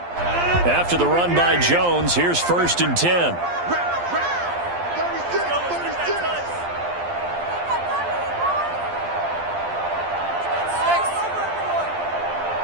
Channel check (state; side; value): late; left; 12 ms